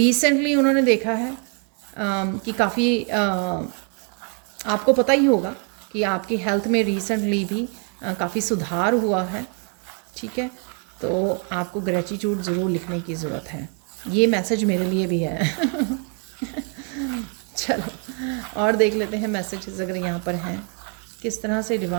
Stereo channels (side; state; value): left; quieter; 39.9 dB